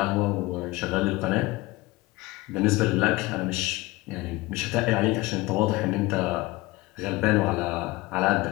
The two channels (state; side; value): quieter; right; 20.8 dB